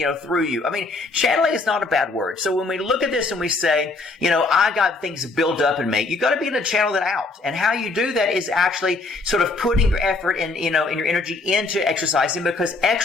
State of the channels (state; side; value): quieter; right; 3.5 dB